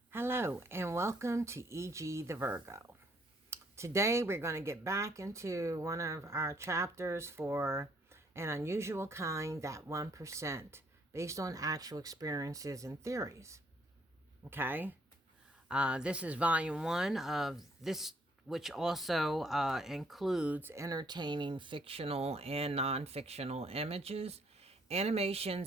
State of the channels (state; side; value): normal; both; correlation 0.67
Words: Hello and welcome to E.G. the Virgo. Today we're going to get back into one of our chapters for An Unusual Kind, That 1%, based on actual experiences and theories. Okay? This is volume 1 of this, which also includes entertaining fictional and non-fictional images,